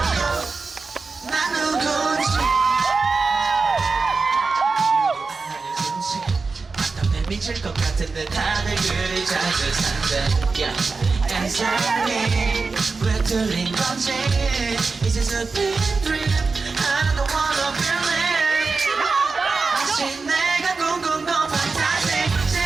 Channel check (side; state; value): left; quieter; 4.3 dB